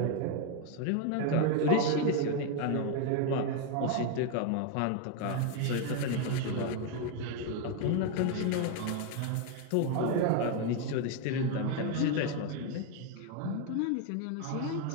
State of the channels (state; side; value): different; both; correlation 0.01